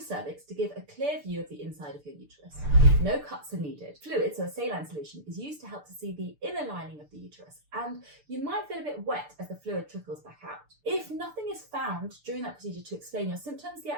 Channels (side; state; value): left; late; 6.8 ms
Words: cervix to give a clear view of the inside of your uterus. No cuts are needed. Fluid, so a saline solution, is used to help to see the inner lining of the uterus, and you might feel a bit wet as the fluid trickles back out. If nothing is found during that procedure to explain your symptoms, the